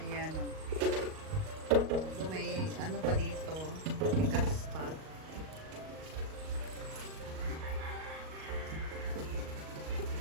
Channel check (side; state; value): left; late; 38 ms